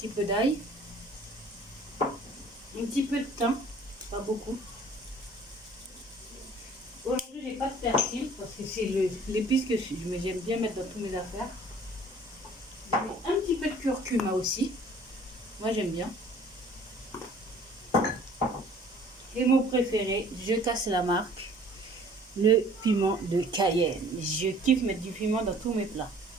peu d'ail, un petit peu de thym, pas beaucoup. Aujourd'hui, j'ai pas de persil parce que c'est l'épice que j'aime bien mettre dans toutes mes affaires. Je mets un petit peu de curcuma aussi. Moi, j'aime bien. Et mon préféré, je casse la marque, le piment de Cayenne. Je kiffe mettre du piment dans tous mes plats.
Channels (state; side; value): normal; both; correlation 0.52